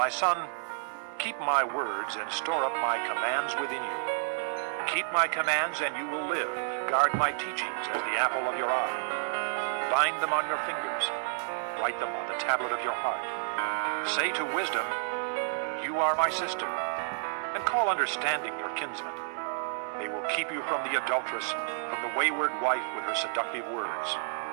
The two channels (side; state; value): left; silent; digital silence